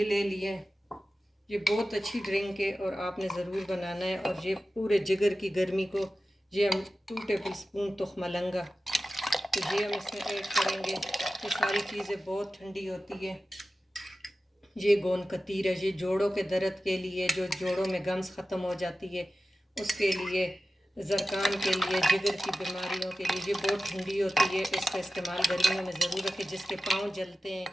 ले लिए। ये बहुत अच्छी ड्रिंक है और आपने ज़रूर बनाना है। और ये पूरे जिगर की गर्मी को ये हम 2 टेबल स्पून तुखमलंगा तो ये हम इसमें ऐड करेंगे। ये सारी चीज़ें बहुत ठंडी होती है। ये गोंद कतीरा, ये जोड़ों के दर्द के लिए, जो जोड़ों में गम्स ख़त्म हो जाती है उसके लिए, ज़रकान के लिए, जिगर की बीमारियों के लिए ये बहुत ठंडी होती है। इसका इस्तेमाल गर्मियों में ज़रूर रखें। जिसके पाँव जलते हैं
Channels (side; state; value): both; normal; correlation 0.94